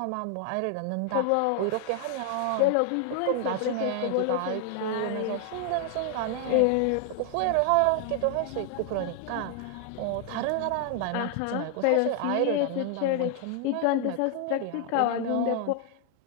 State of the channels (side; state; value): both; different; correlation 0.00